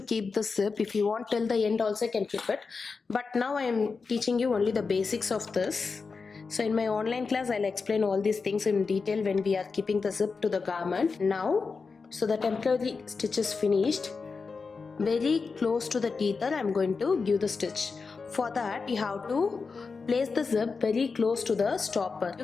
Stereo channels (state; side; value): quieter; right; 4.7 dB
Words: keep the zip. If you want till the end also you can keep it. But now I am teaching you only the basics of this. So in my online class I'll explain all these things in detail when we are keeping the zip to the garment. Now, so the temporary stitch is finished. Very close to the tether I'm going to give the stitch. For that you have to place the zip very close to the stopper. You